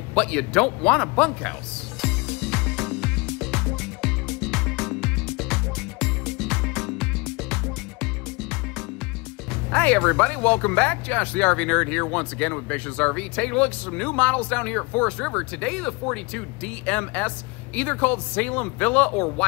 but you don't want a bunkhouse. Hi everybody, welcome back. Josh the RV Nerd here once again with Bishop's RV. Taking a look at some new models down here at Forest River. Today the 42 DMS, either called Salem Villa or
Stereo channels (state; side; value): quieter; right; 27.2 dB